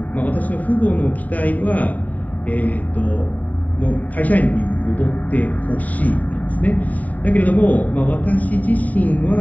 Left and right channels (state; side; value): late; right; 0.074 ms